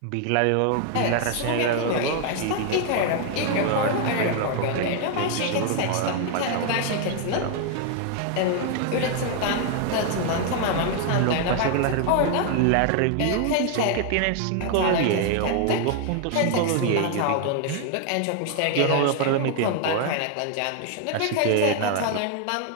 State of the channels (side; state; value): both; different; correlation 0.00